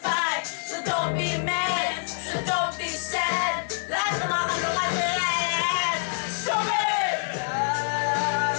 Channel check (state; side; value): silent; right; 61 dB below the other